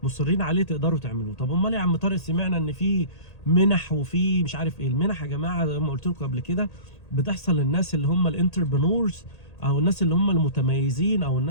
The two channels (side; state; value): right; late; 1.8 ms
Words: مصرين عليه تقدروا تعملوه. طب امال يا عم طارق سمعنا ان في منح وفي مش عارف ايه. المنح يا جماعه زي ما قلت لكم قبل كده بتحصل للناس اللي هم الانتربرنورز او الناس اللي هم المتميزين او